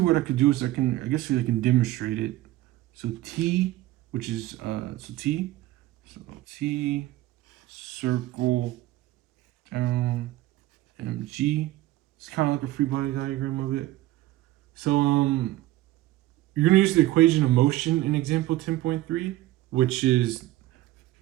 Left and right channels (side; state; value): left; quieter; 16.1 dB